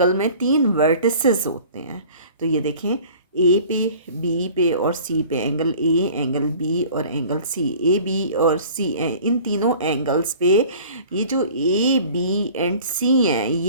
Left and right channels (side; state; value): both; inverted; correlation -0.46